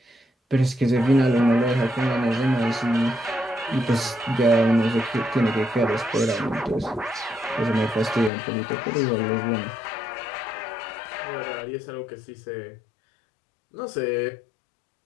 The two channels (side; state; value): right; drops out; at 8.3 s